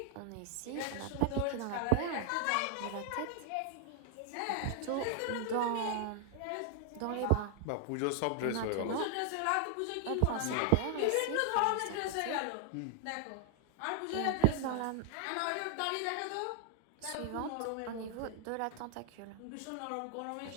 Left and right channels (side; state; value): both; different; correlation 0.00